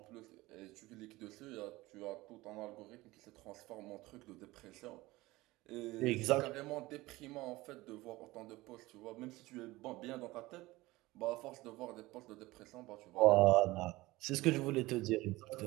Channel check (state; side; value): quieter; left; 19.7 dB